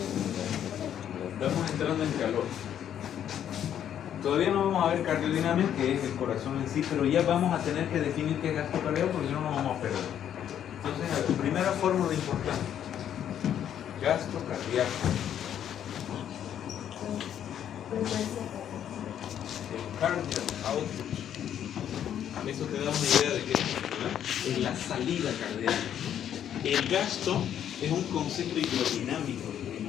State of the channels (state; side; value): quieter; right; 9.9 dB